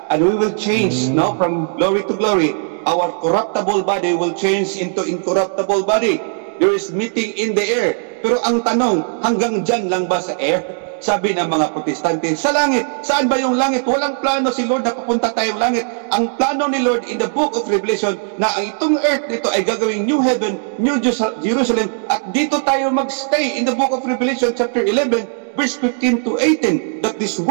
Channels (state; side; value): silent; left; 67 dB below the other